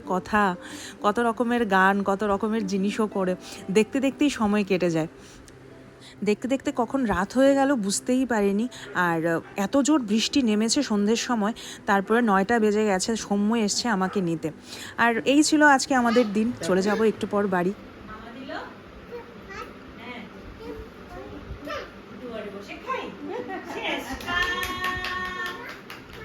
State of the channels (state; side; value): identical; both; correlation 1.00